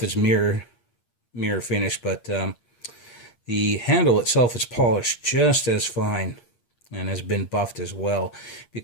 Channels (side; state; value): right; late; 8.6 ms